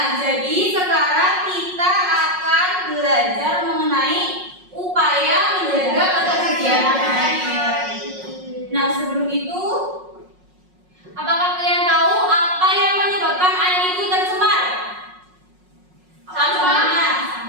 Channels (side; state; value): left; late; 5.5 ms